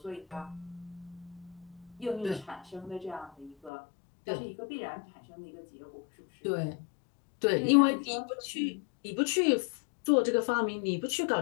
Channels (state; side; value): drops out; right; at 3.7 s